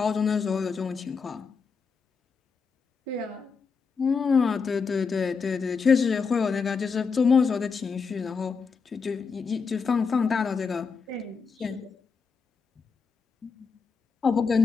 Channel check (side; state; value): right; quieter; 5.3 dB